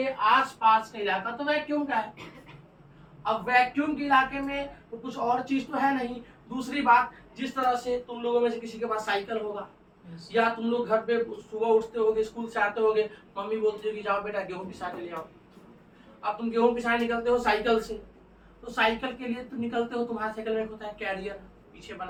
आसपास का इलाका तो वैक्यूम का है। अब वैक्यूम के इलाके में तो कुछ और चीज तो है नहीं। दूसरी बात, जिस तरह से तुम लोगों में से किसी के पास साइकिल होगा, या तुम लोग घर पे सुबह उठते होगे, स्कूल से आते होगे, मम्मी बोलती है कि जाओ बेटा गेहूं पिसा के ले आओ। अब तुम गेहूं पिसाने निकलते हो साइकिल से, तो साइकिल के लिए तुम निकलते हो, तुम्हारे साइकिल में होता है कैरियर पीछे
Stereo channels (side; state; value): both; identical; correlation 1.00